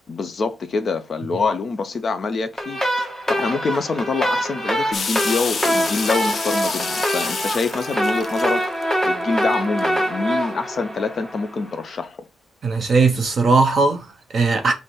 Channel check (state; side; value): normal; both; correlation 0.83